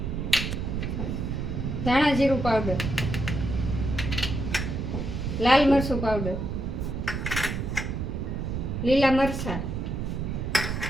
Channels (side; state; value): right; noise; rumble, 3 dB below the sound